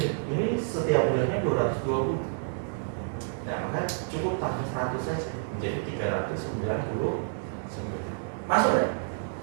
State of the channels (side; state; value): left; silent; 59 dB below the other